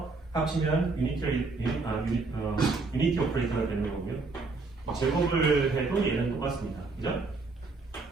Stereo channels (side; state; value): left; quieter; 3.8 dB